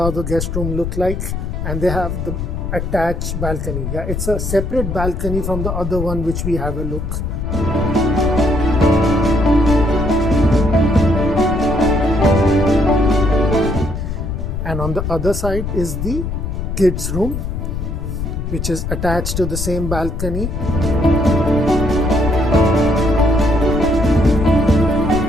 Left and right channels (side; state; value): left; noise; rumble, 4 dB below the sound